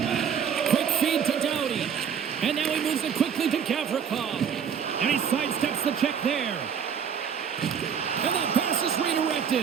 Quick feed to Doughty. And now he moves it quickly to Gavrikov. And he sidesteps the check there. And that pass is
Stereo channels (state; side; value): quieter; left; 7.6 dB